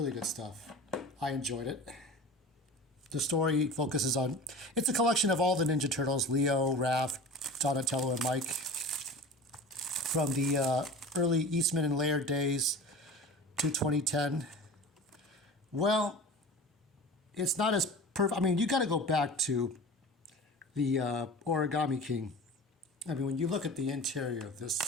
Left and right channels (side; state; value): both; normal; correlation 0.35